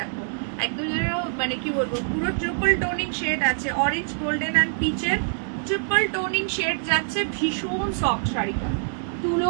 একদম যেন মানে কি বলবো, পুরো ট্রিপল টোনিং শেড আছে, অরেঞ্জ গোল্ডেন অ্যান্ড পিচের ট্রিপল টোনিং শেড যাচ্ছে। ভীষণ সফট শাড়িটা,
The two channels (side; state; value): left; silent; digital silence